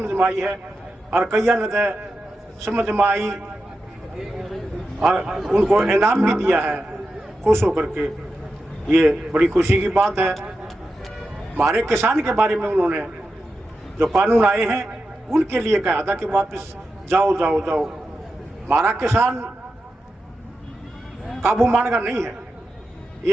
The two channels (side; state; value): both; normal; correlation 0.89